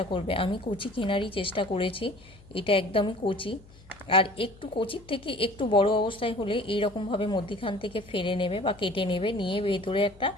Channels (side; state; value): left; noise; hum, 23 dB below the sound